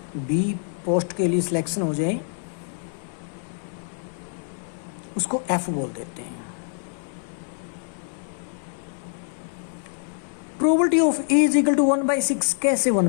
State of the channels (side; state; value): right; silent; digital silence